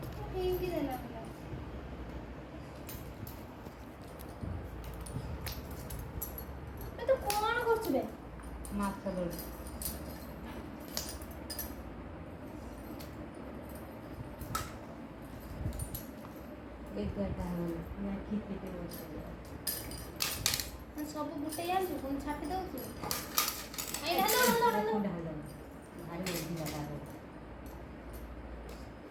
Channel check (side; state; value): both; identical; correlation 1.00